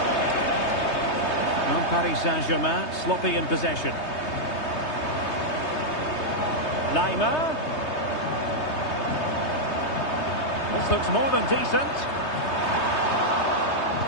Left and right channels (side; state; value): right; late; 3.2 ms